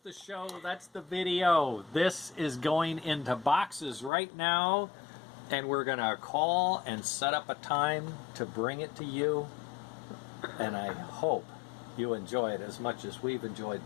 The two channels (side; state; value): right; drops out; at 4.1 s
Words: show. That's the video. This is going into boxes right now, and we're going to call and set up a time to bring it to you. And I hope you enjoy it as much as we've enjoyed